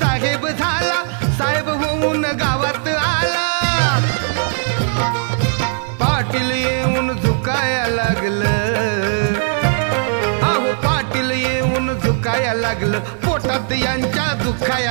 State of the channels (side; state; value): left; silent; 63 dB below the other